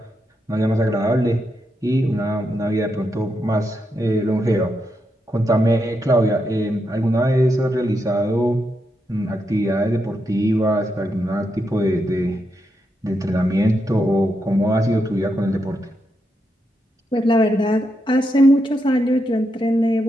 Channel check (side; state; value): both; normal; correlation 0.83